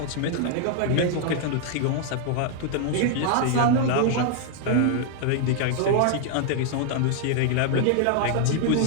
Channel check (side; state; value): both; different; correlation 0.00